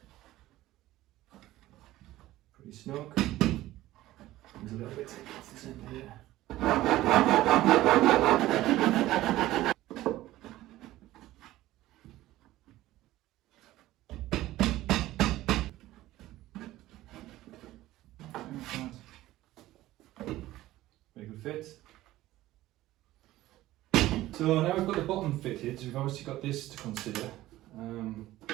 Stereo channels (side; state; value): left; quieter; 15.9 dB